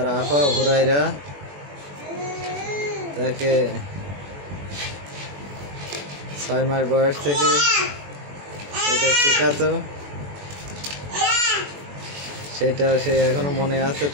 আপা হুরাইরা তাকে 6 মাস বয়স থেকে এটা শেখাতো, সেটা সে এখনো মনে আছে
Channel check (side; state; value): left; late; 21 ms